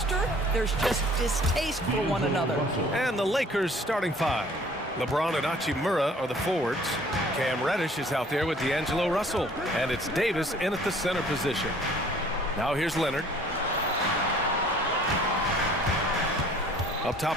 There's just distaste for one another. And the Lakers starting 5. LeBron and Hachimura are the forwards. Cam Reddish is out there with D'Angelo Russell. And it's Davis in at the center position. Now here's Leonard. Up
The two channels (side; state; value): both; normal; correlation 0.54